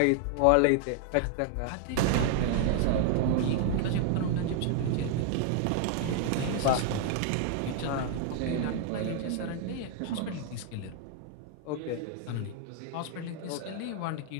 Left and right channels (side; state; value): both; different; correlation 0.00